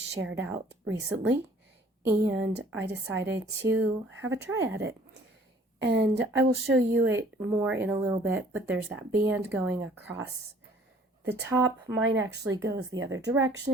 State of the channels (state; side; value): normal; both; correlation 0.55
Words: out recently, and I decided to have a try at it. And I will show you it more in a little bit, but there's that band going across the top. Mine actually goes the other